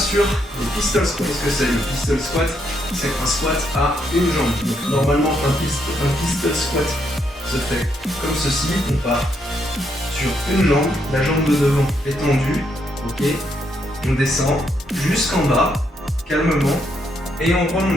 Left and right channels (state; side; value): normal; both; correlation 0.76